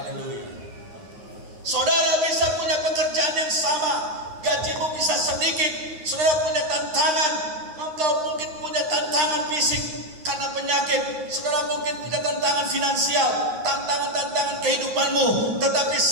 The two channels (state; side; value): late; left; 9.4 ms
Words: Saudara bisa punya pekerjaan yang sama, gajimu bisa sedikit, saudara punya tantangan, engkau mungkin punya tantangan fisik karena penyakit, saudara mungkin punya tantangan finansial, tantangan kehidupanmu. Tetapi